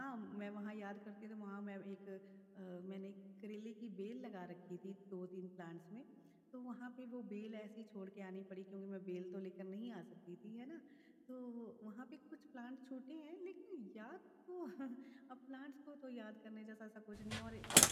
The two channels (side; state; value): both; identical; correlation 1.00